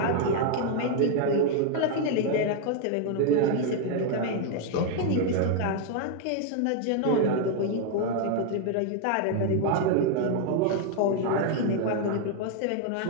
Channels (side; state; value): both; different; correlation 0.00